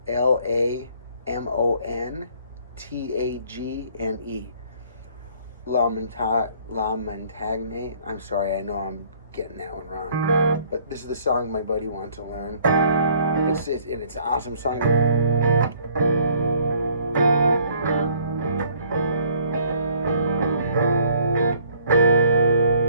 LaMontagne. LaMontagne. I'm sorry, I know I'm getting that one wrong. But this is the song my buddy wanted to learn. It's an awesome song.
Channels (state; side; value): inverted; both; correlation -0.60